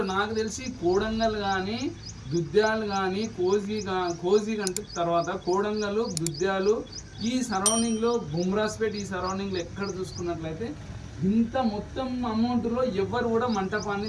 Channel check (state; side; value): identical; both; correlation 1.00